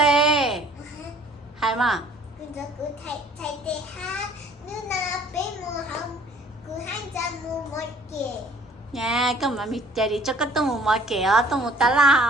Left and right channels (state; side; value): normal; both; correlation 0.55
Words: hay mà nha cơ mà mình chạy đi cho cái tôm một kẻ tôm một tá